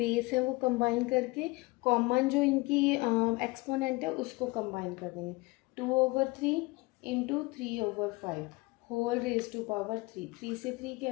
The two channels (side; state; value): right; quieter; 23.2 dB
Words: है वो कंबाइन करके कॉमन जो इनकी एक्सपोनेंट है उसको कंबाइन कर देंगे। 2/3 into 3/5 whole raise to power 3, 3 से 3